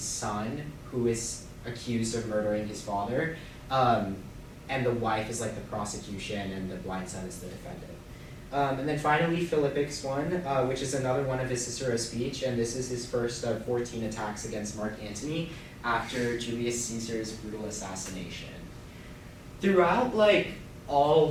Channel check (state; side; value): identical; both; correlation 1.00